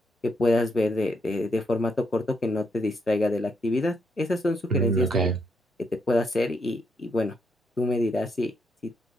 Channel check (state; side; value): normal; both; correlation 0.77